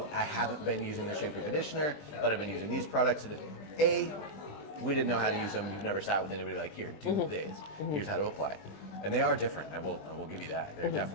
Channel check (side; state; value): right; late; 20 ms